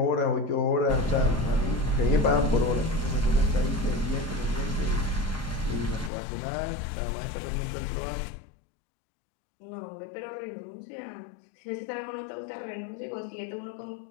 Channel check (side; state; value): right; drops out; at 6.1 s